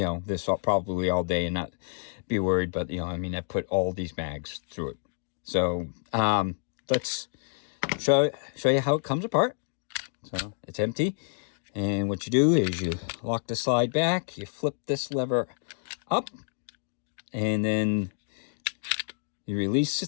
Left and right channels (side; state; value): right; silent; digital silence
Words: probably all day and not be worried. But, I put all these mags through it. So let's show you how it comes apart. So it's empty, and what you do is you lock the slide back, you flip this lever up, and then you release